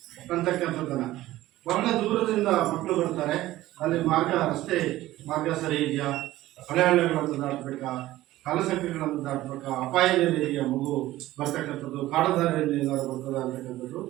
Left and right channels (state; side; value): quieter; left; 16.0 dB